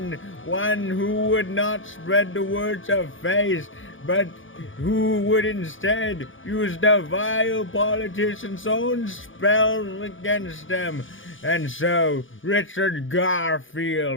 one who would not spread the words of faith, but who would instead use the vile politician's own spells against them. And so Richard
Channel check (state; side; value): late; right; 0.57 ms